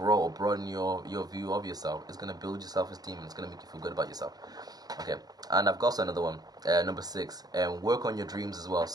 or broaden your view of yourself, it's going to build your self-esteem, and it's going to make you feel good about yourself. Okay, and I've got also another one, number 6, work on your dreams as well.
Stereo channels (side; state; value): left; late; 0.19 ms